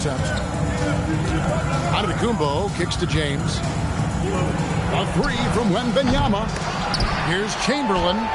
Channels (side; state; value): both; identical; correlation 1.00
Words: Antetokounmpo kicks to James. A three from Wembanyama. Here's Chamberlain.